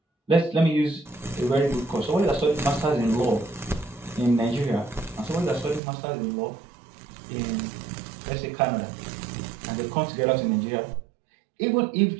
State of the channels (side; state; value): left; drops out; at 5.8 s